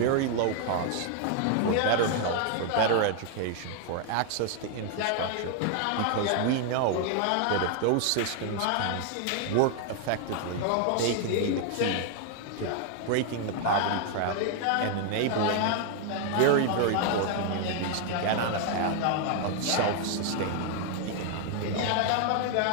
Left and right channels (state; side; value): different; both; correlation 0.00